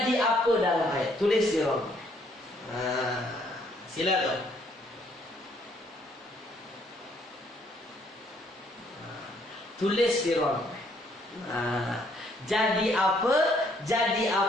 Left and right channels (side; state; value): both; normal; correlation 0.67